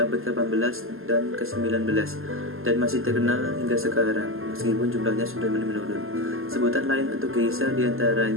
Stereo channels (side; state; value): left; late; 0.60 ms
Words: abad ke-18 dan ke-19 dan masih terkenal hingga sekarang, meskipun jumlahnya sudah menurun. Sebutan lain untuk geisha